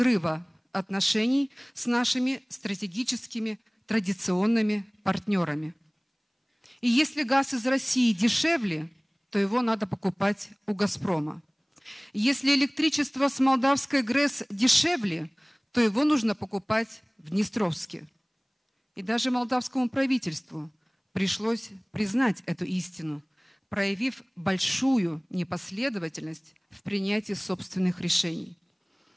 отношений с нашими стратегическими традиционными партнерами. И если газ из России дешевле, то его надо покупать у «Газпрома». Если электричество с молдавской ГРЭС дешевле, то его нужно покупать в Днестровске. И даже молдавскому правительству пришлось признать эту истину, проявив большую непоследовательность в принятии собственных решений.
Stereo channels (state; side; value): identical; both; correlation 1.00